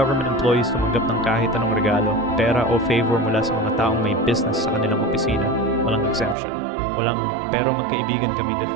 employees tumanggap ng kahit anong regalo, pera o favor mula sa mga taong may business sa kanilang opisina. Walang exemption. Walang pero magkaibigan kami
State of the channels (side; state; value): left; drops out; at 6.4 s